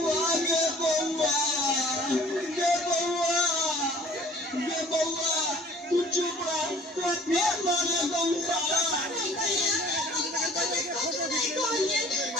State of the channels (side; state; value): both; normal; correlation 0.51